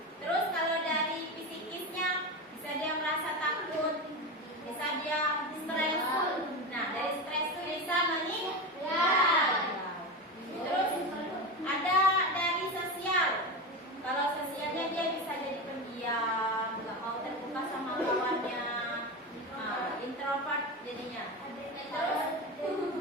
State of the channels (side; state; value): both; normal; correlation 0.20